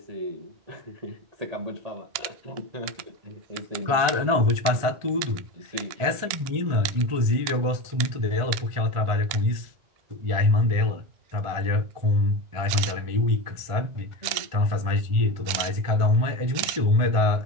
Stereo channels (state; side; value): late; left; 2.8 ms